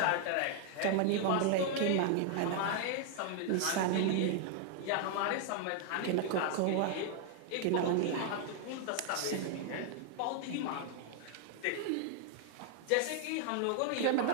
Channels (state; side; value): different; both; correlation 0.00